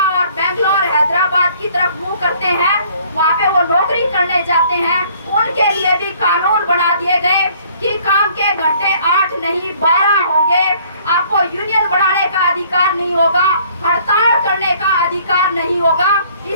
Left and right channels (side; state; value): both; inverted; correlation -0.58